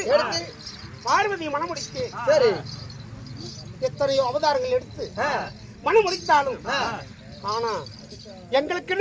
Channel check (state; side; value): identical; both; correlation 1.00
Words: பார்வதியை மணமுடித்து எத்தனையோ அவதாரங்கள் எடுத்து மணமுடித்தாலும் ஆனா